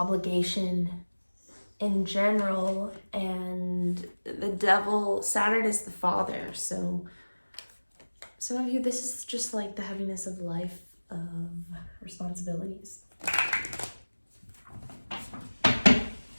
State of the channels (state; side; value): inverted; both; correlation -1.00